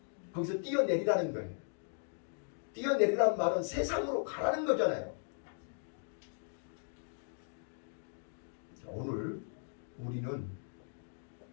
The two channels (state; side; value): silent; right; digital silence